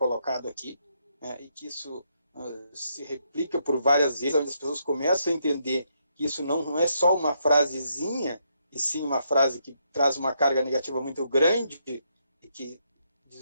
aqui, né, e que isso se replica por várias vezes, onde as pessoas começam a entender que isso não é só uma frasezinha, e sim uma frase que traz uma carga negativa muito grande e que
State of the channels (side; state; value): both; inverted; correlation -0.76